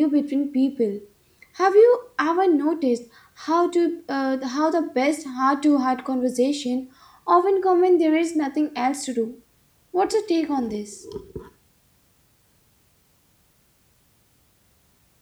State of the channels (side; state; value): both; identical; correlation 1.00